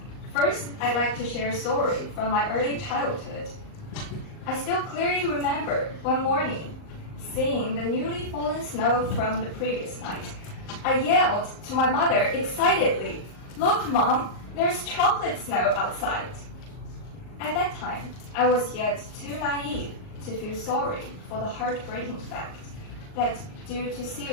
first I'd like to share a story from my early childhood. I still clearly remember one morning, seeing the newly fallen snow from the previous night. I yelled to my mother excitedly, "Look, Mom, there's chocolate snow outside." At that time, I was yet too naive to feel sorry for the heartbreaking fact that due to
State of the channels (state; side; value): late; right; 38 ms